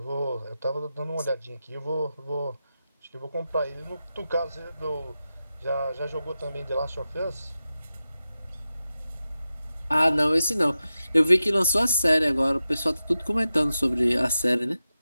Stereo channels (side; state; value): both; inverted; correlation -0.92